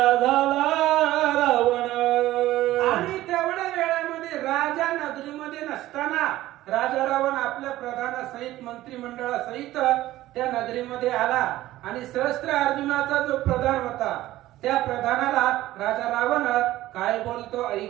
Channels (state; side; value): quieter; left; 15.6 dB